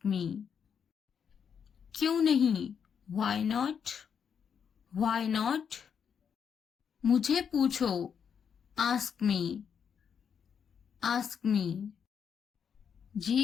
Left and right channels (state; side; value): quieter; right; 7.3 dB